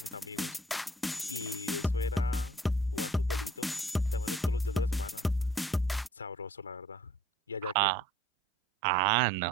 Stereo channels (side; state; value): both; normal; correlation 0.56